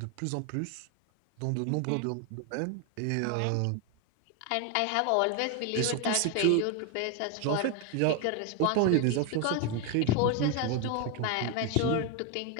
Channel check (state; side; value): different; both; correlation 0.01